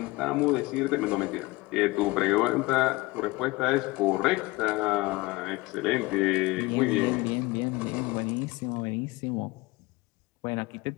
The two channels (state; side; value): quieter; right; 22.0 dB